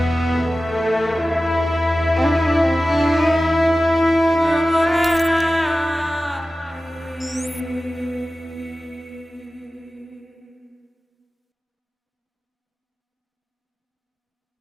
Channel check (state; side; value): normal; both; correlation 0.95